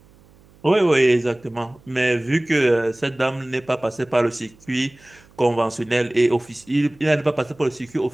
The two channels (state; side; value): noise; right; hum, 28 dB below the sound